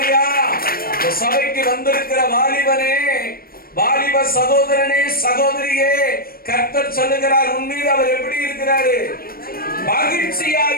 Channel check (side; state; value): right; late; 0.43 ms